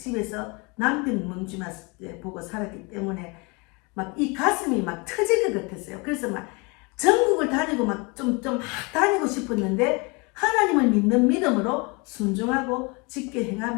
남편 문주만 보고 살았기 때문에 막 이 가슴이 막 터질 것 같았어요. 그래서 막 전국을 다니고 막 좀 다니고 싶었는데 하나님을 믿는 믿음으로 순종하고 직계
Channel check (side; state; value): right; quieter; 29.1 dB